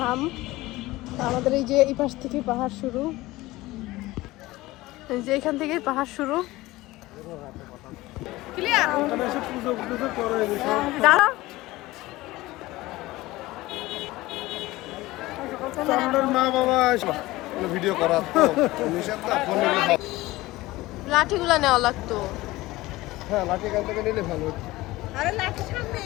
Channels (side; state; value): right; quieter; 18.8 dB